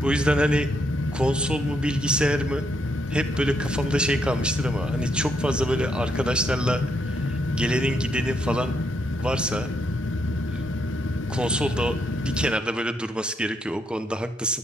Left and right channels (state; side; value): normal; both; correlation 0.77